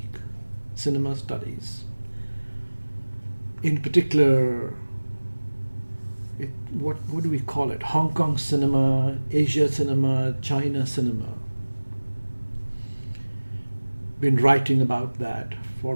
cinema studies. In particular, what do we call it? Hong Kong cinema, Asia cinema, China cinema. Been writing about that for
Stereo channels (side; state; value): both; inverted; correlation -1.00